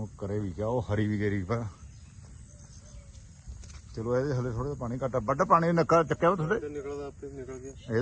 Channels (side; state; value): both; identical; correlation 1.00